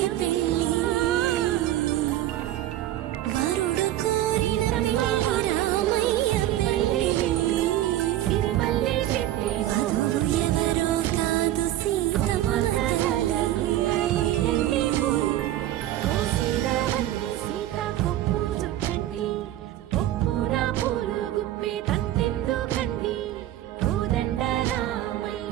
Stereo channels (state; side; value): quieter; left; 13.5 dB